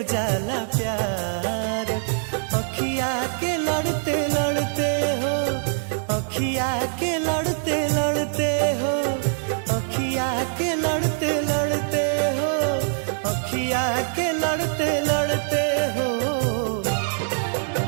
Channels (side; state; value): left; silent; digital silence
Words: जाला प्यार, अखिया के लड़ते लड़ते हो, अखिया के लड़ते लड़ते हो, अखिया के लड़ते लड़ते हो, अखिया के लड़ते लड़ते हो।